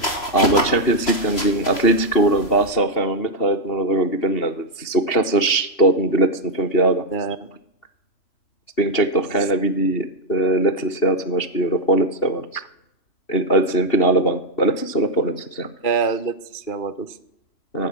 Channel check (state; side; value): late; right; 3.0 ms